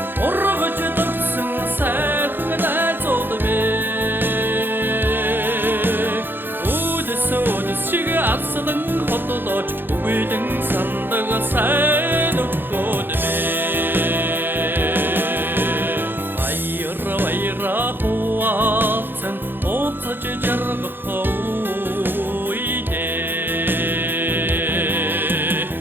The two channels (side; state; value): left; late; 0.098 ms